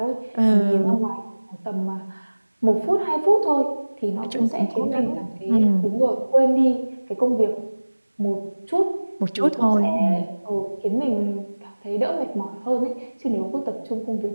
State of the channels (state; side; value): inverted; both; correlation -1.00